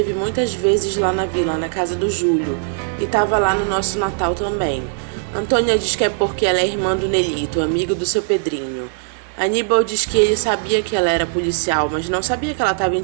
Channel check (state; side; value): silent; left; digital silence